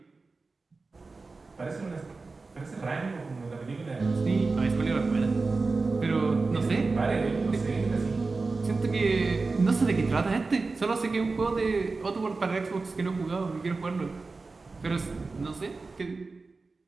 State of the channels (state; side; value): quieter; left; 3.9 dB